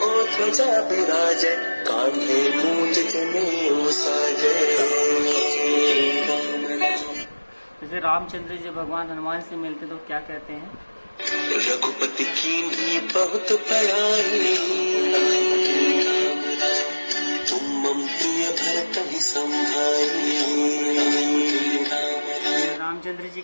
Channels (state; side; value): inverted; both; correlation -1.00